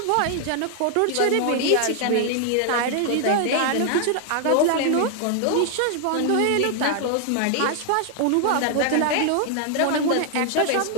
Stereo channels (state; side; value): different; both; correlation 0.00